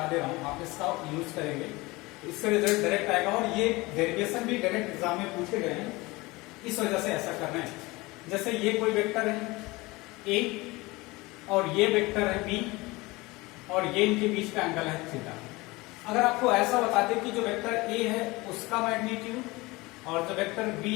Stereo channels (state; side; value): quieter; right; 22.4 dB